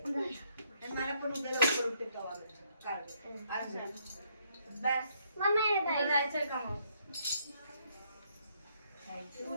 आणि मला पण उद्या लवकर उठते तवा काल बस मम्मी जायचंय का मग तू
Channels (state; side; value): inverted; both; correlation -0.71